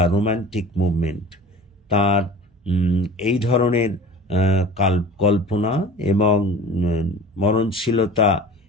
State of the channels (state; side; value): normal; both; correlation 0.40